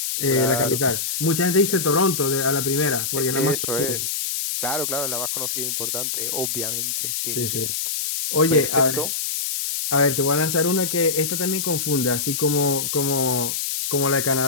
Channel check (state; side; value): noise; left; hiss, 2 dB below the sound